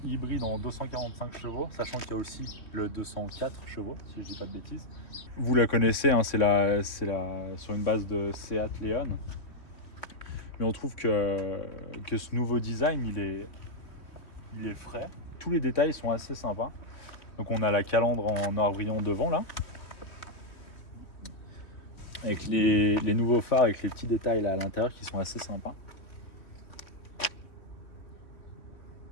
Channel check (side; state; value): right; late; 3.1 ms